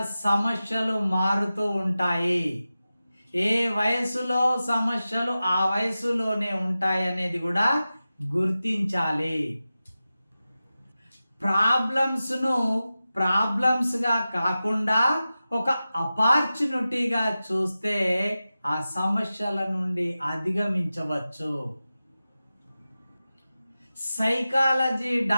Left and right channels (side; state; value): both; inverted; correlation -0.94